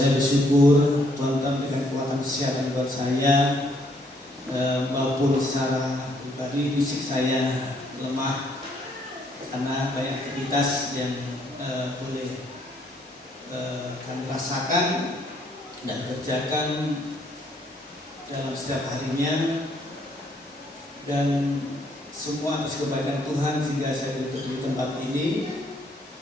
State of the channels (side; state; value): both; normal; correlation 0.68